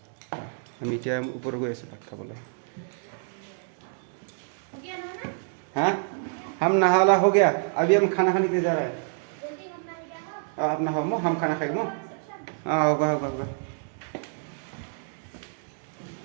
আমি এতিয়া ওপৰত গৈ আছোঁ ভাত খাবলৈ। हाँ हम नहा वाला हो गया, अभी हम खाना खाने के लिए जा रहे हैं। आप नहाओ मो, हम खाना खाएंगे मो। हाँ होगा होगा होगा।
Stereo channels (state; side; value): silent; left; 60 dB below the other